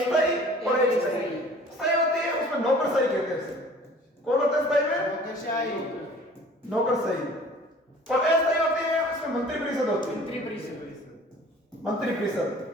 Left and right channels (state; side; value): normal; both; correlation 0.49